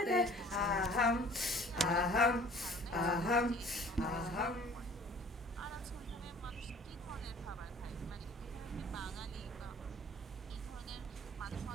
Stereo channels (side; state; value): both; normal; correlation 0.50